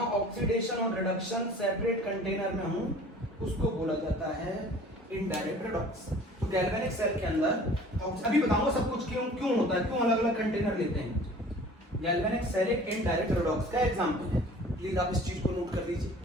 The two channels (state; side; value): normal; both; correlation 0.47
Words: ऑक्सीडेशन और रिडक्शन सेपरेट कंटेनर में हूं उसको बोला जाता है इनडायरेक्ट रिडॉक्स। तो गैल्वेनिक सेल के अंदर अभी बताऊंगा सब कुछ क्यों होता है, क्यों अलग अलग कंटेनर लेते हैं। गैल्वेनिक सेल एक इनडायरेक्ट रिडॉक्स का एग्जांपल है। प्लीज आप इस चीज को नोट कर लीजिए,